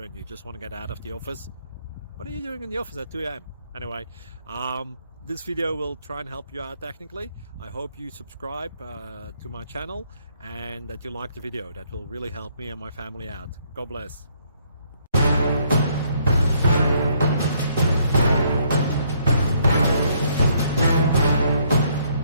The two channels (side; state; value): both; inverted; correlation -0.68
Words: and you just want to get out of the office. What are you doing in the office at 2 a.m.? Anyway, this video will try and help you out technically. I hope you subscribe to my channel and that you like the video. That will really help me and my family out. God bless.